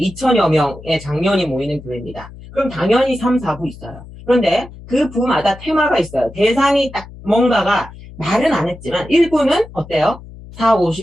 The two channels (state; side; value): noise; left; hum, 17 dB below the sound